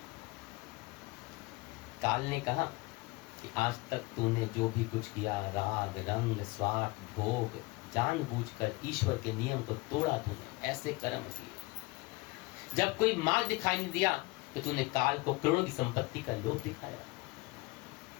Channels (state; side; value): quieter; right; 23.6 dB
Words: काल ने कहा कि आज तक तूने जो भी कुछ किया, राग रंग स्वार्थ भोग, जानबूझकर ईश्वर के नियम को तोड़ा तूने, ऐसे कर्म किए। जब कोई मार्ग दिखाई नहीं दिया तो तूने काल को करोड़ों की संपत्ति का लोभ दिखाया।